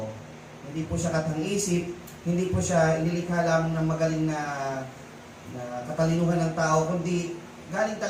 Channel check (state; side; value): identical; both; correlation 1.00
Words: Hindi po siya katang-isip, hindi po siya inilikha lamang ng magaling na katalinuhan ng tao, kundi galing